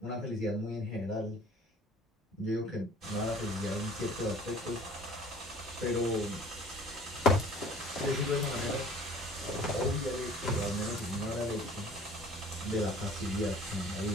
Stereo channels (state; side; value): normal; both; correlation 0.49